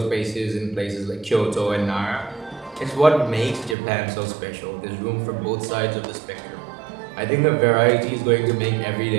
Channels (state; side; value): drops out; left; at 3.8 s